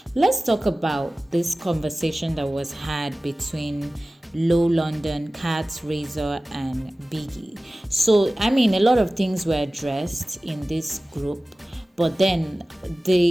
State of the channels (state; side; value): normal; both; correlation 0.97